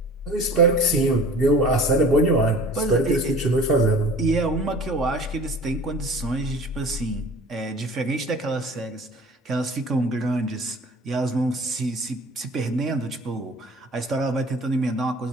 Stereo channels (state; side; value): normal; both; correlation 0.45